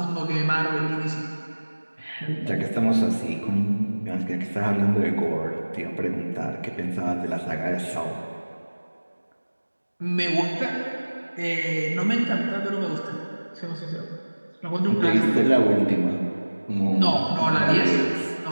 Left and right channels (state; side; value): inverted; both; correlation -1.00